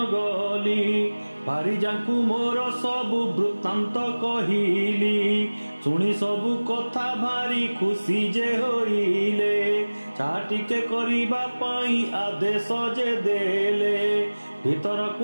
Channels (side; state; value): both; inverted; correlation -1.00